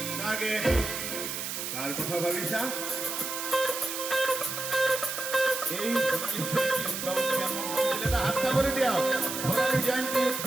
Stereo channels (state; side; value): noise; right; hiss, 4 dB below the sound